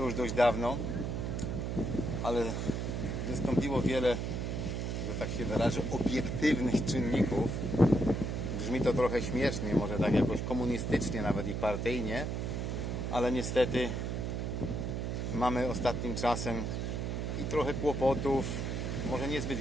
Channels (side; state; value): right; noise; hum, 2 dB below the sound